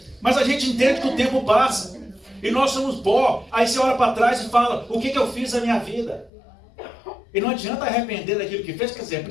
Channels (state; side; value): drops out; right; at 6.3 s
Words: mas a gente entende que o tempo passa. E nós somos pó. Aí você olha para trás e fala, o que eu fiz na minha vida? E não adianta arrepender daquilo que fez, quer dizer, é